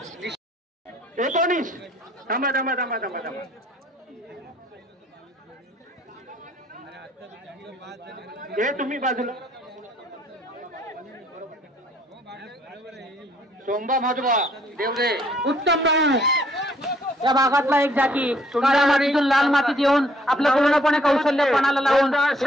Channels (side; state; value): both; normal; correlation 0.63